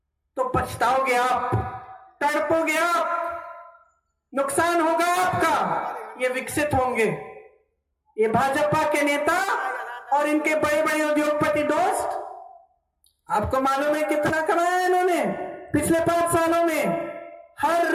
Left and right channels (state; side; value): identical; both; correlation 1.00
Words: तो पछताओगे आप, तड़पोगे आप, नुकसान होगा आपका। ये विकसित होंगे, ये भाजपा के नेता और इनके बड़े बड़े उद्योगपति दोस्त। आपको मालूम है कितना कमाया इन्होंने पिछले 5 सालों में? हर